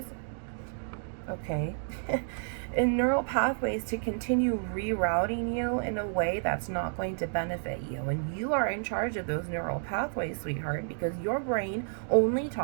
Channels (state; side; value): silent; left; digital silence